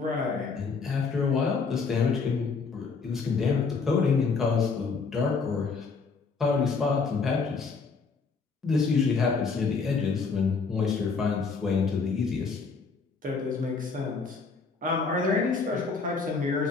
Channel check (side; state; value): right; quieter; 4.8 dB